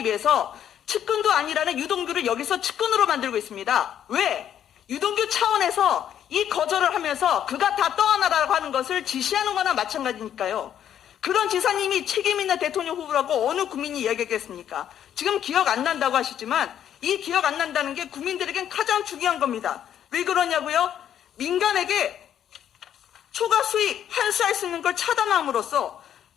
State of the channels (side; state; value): right; quieter; 9.9 dB